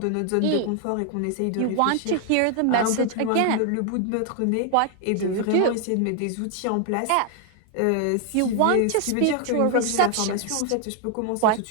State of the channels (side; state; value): both; different; correlation 0.00